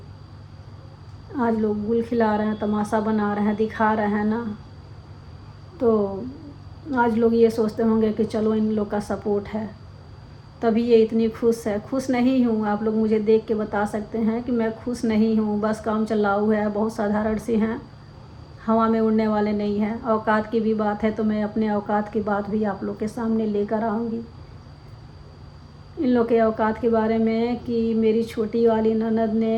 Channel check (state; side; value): identical; both; correlation 1.00